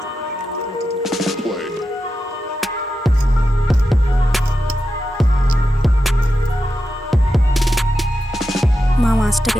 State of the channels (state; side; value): normal; both; correlation 0.89